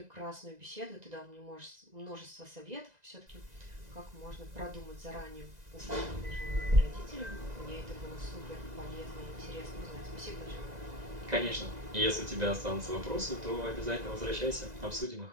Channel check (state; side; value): late; left; 2.0 ms